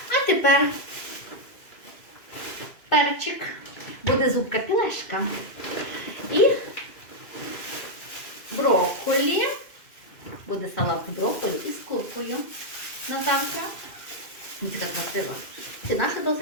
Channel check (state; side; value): late; right; 2.4 ms